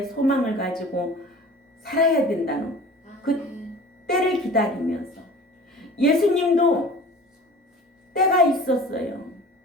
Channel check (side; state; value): both; normal; correlation 0.42